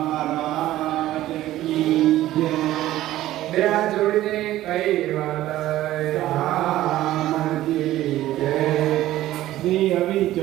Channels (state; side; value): quieter; left; 14.6 dB